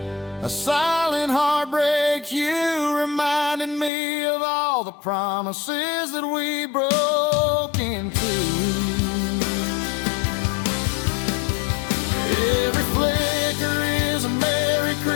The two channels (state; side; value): drops out; right; at 3.9 s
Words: a silent heartbreak. You reminded me of all the promises that we broke into. Every flicker is a Merry